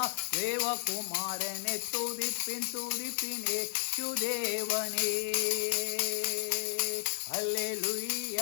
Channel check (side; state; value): right; silent; digital silence